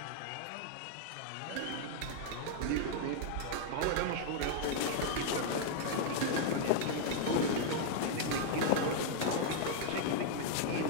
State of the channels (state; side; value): different; both; correlation -0.01